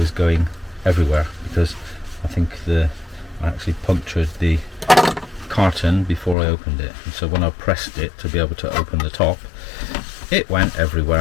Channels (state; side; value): drops out; right; at 6.4 s